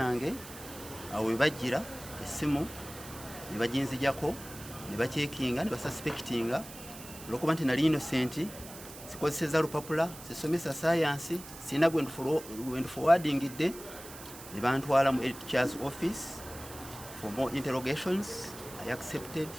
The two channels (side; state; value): right; noise; hiss, 15 dB below the sound